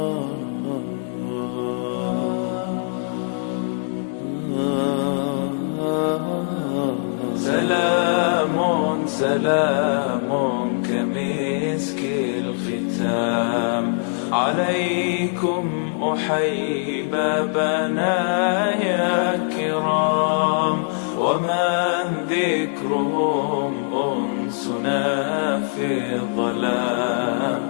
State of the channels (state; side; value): silent; right; digital silence